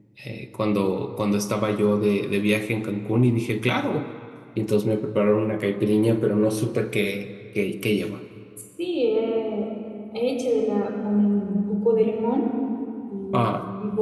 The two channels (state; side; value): identical; both; correlation 1.00